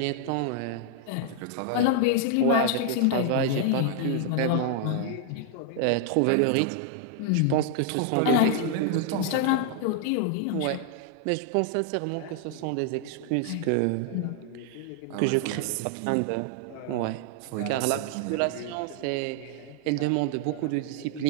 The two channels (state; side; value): different; both; correlation 0.00